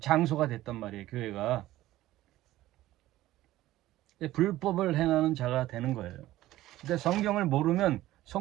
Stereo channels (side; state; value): left; quieter; 15.6 dB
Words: 장소가 됐단 말이에요. 교회가. 불법을 행하는 자가 되는 거예요. 근데 성경을 모르면